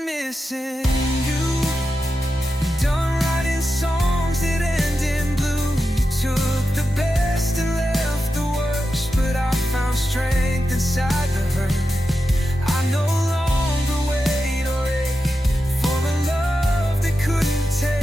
missing you, done writing songs that end in blue. You took the best and left the worst, but I found strength inside the hurt. I no longer wait or ache for a love that couldn't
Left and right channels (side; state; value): both; normal; correlation 0.90